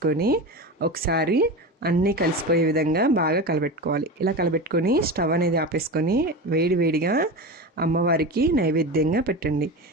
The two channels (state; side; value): normal; both; correlation 0.25